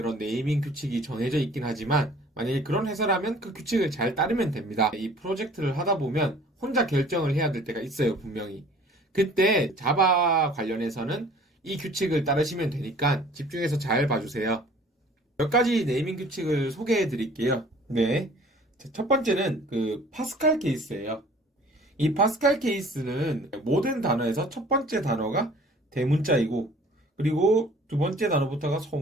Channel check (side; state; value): both; normal; correlation 0.51